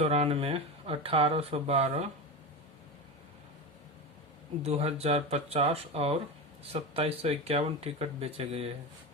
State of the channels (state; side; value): normal; both; correlation 0.22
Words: 1812, 2050 और 2751 टिकट बेचे गए हैं।